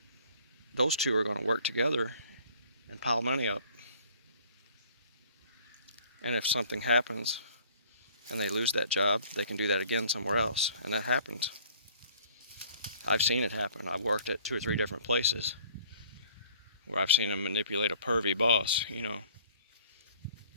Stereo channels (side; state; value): both; inverted; correlation -0.54